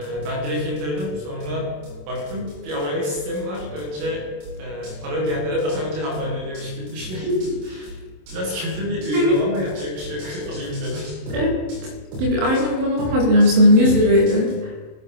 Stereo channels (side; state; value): left; late; 27 ms